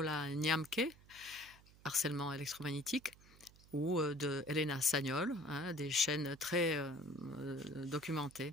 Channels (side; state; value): right; noise; hum, 24 dB below the sound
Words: Niamke, harcèlement électromagnétique, ou de Elena Sagnol, hein, des chaînes très documentées.